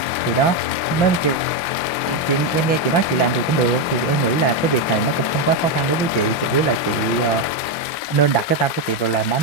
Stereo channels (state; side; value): late; right; 5.8 ms